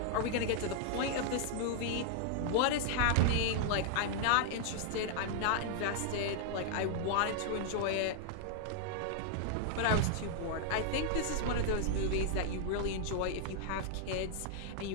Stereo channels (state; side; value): different; both; correlation 0.00